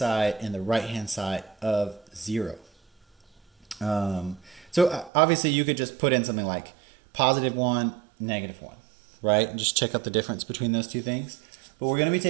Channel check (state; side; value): drops out; left; at 5.1 s